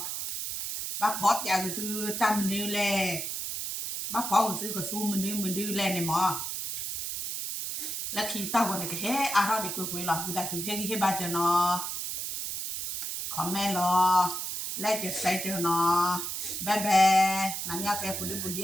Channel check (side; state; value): right; noise; hiss, 4 dB below the sound